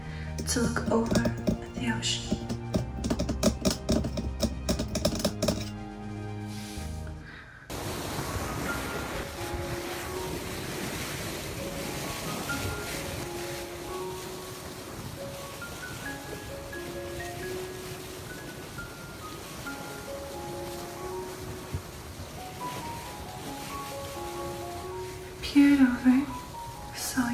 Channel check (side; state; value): both; identical; correlation 1.00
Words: to look over at the ocean. Peered over, saw